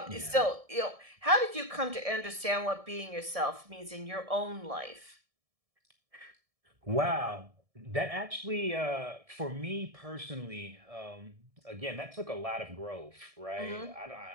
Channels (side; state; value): left; late; 1.7 ms